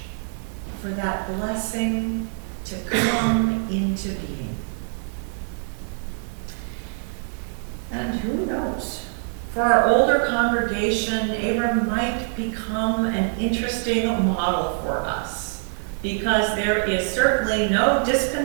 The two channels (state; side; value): silent; left; 62 dB below the other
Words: for that blessing to come into being? And who knows? For our older congregation, Abram might become an interesting model for us, because there is certainly no